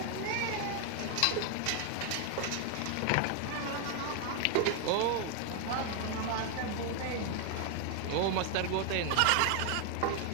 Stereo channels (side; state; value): both; different; correlation 0.01